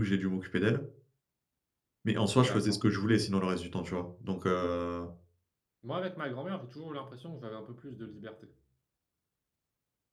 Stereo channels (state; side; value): identical; both; correlation 1.00